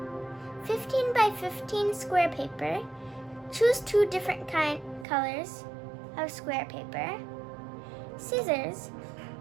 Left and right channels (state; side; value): drops out; left; at 5.1 s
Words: 15 by 15 square paper. Choose 2 different colors of square paper. Scissors.